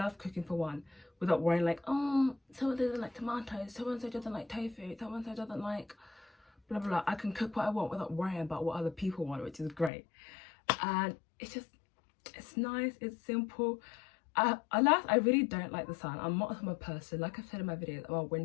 cooking for one without worrying like, oh, someone doesn't like tomatoes, someone doesn't like tofu, someone doesn't like blah blah blah. I can cook what I want without worrying about what other people want, which is great. And it's nice, it's simple. Alas, I really don't like the sun. I'm not a summer person. Like I've said in my videos, I'm a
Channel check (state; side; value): drops out; right; at 9.9 s